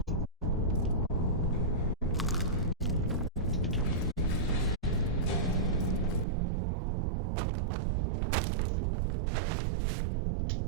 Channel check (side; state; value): left; drops out; at 6.2 s